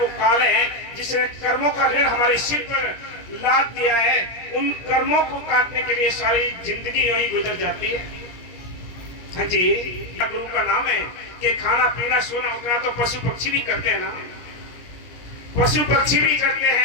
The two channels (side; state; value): right; late; 17 ms